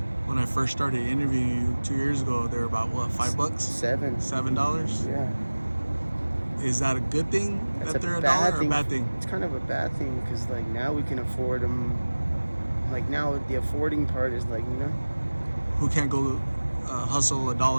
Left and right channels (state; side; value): inverted; both; correlation -1.00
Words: When I first started interviewing you 2 years ago, they were about what, $5? $7? Yeah. Is that a good thing That's that they're $1 or a bad thing? It's kind of a bad thing because like now we can afford them. Like now the affording part is like, you know, who can't go hustle $1,